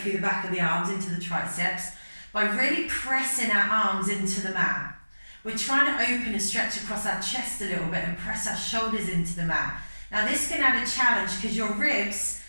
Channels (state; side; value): inverted; both; correlation -1.00